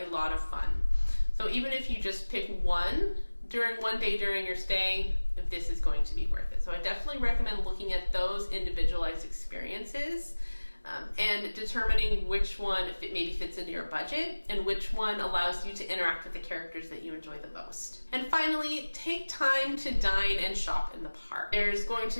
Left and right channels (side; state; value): both; inverted; correlation -1.00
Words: lot of fun. So even if you just pick one day during your stay, this is going to be worth it. So I definitely recommend looking at those individualized experiences and determining which one maybe fits into your budget and which one allows you to interact with the characters that you enjoy the most. And finally, take time to dine and shop in the park. There's going